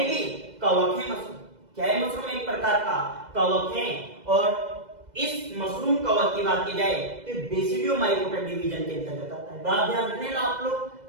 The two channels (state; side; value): late; left; 2.0 ms